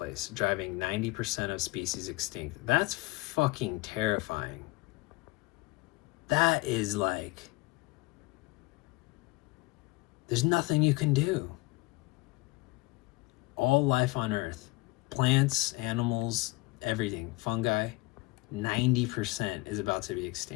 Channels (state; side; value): quieter; right; 22.7 dB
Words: driving 90% of species extinct. That's fucking terrifying. That is like, there's nothing you can do. All life on Earth, plants, animals, everything, fungi, 90% is about to be